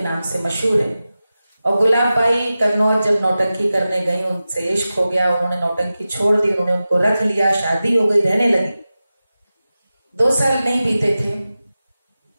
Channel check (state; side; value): inverted; both; correlation -0.94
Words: नाम से मशहूर है। और गुलाब बाई कन्नौज जब नौटंकी करने गई, उनसे इश्क हो गया, उन्होंने नौटंकी छोड़ दी, उन्होंने उनको रख लिया, शादी हो गई, रहने लगी। 2 साल नहीं बीते थे